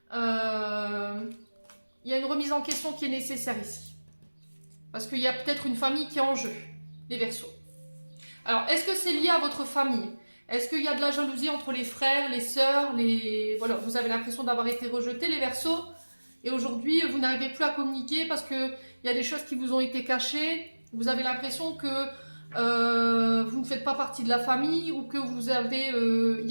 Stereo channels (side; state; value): both; inverted; correlation -1.00